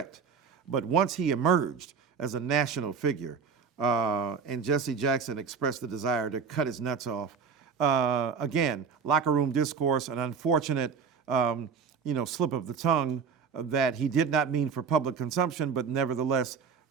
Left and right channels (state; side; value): quieter; left; 6.1 dB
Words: But once he emerged as a national figure and Jesse Jackson expressed the desire to cut his nuts off, again, locker room discourse, an unfortunate slip of the tongue that he did not mean for public consumption, but nevertheless